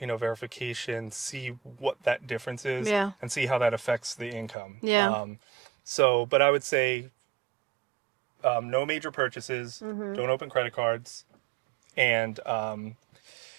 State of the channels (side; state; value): left; drops out; at 4.5 s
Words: see what that difference is, yeah, and see how that affects the income. yeah. But I would say, no major purchases, Mm-hmm. don't open credit cards, and